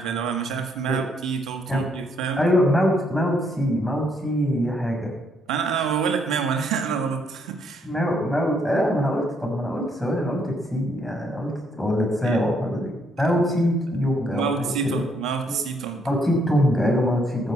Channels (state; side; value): normal; both; correlation 0.71